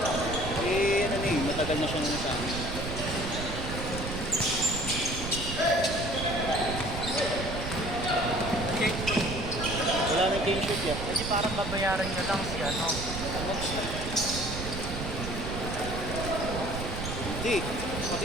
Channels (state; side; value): noise; right; rumble, 5 dB below the sound